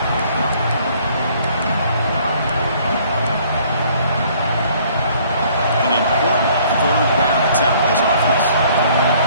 An important third down attempt for this offense.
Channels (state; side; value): inverted; both; correlation -0.59